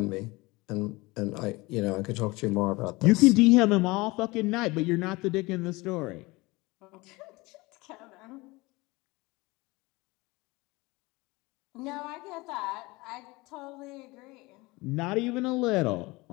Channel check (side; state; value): right; quieter; 22.8 dB